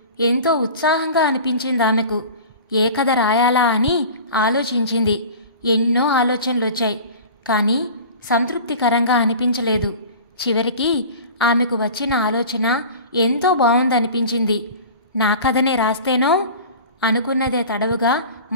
ఎంతో ఉత్సాహంగా అనిపించింది ఆమెకు. ఏ కథ రాయాలా అని ఆలోచించింది. ఎన్నో ఆలోచనలొచ్చాయి. కానీ సంతృప్తికరంగా అనిపించలేదు. చివరికి ఆమెకు వచ్చిన ఆలోచన ఎంతో బావుందనిపించింది. నా కథనే రాస్తేనో అనుకున్నదే తడవుగా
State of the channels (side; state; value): both; inverted; correlation -0.38